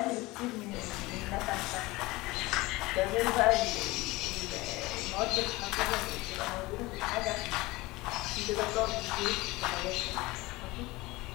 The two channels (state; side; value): quieter; right; 21.1 dB